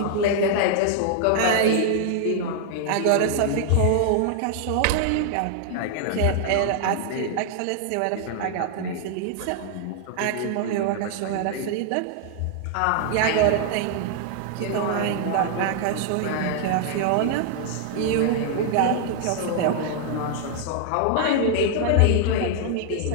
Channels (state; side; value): different; both; correlation -0.01